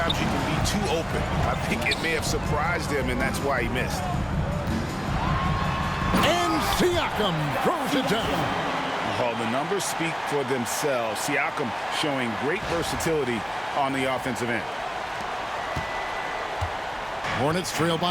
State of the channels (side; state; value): both; identical; correlation 1.00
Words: you can be too open. I think it may have surprised him, and that's why he missed. And Siakam throws it down. Oh, the numbers speak for themselves. Siakam showing great versatility on the offensive end. Hornets trail